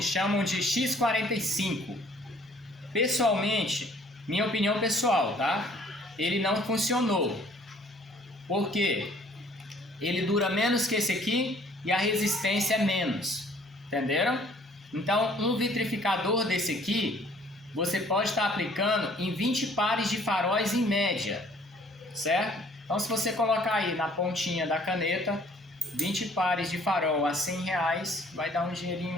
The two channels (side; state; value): both; normal; correlation 0.58